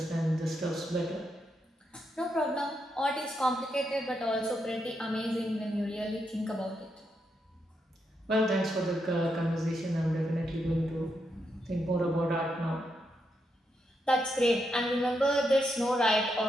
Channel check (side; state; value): both; normal; correlation 0.82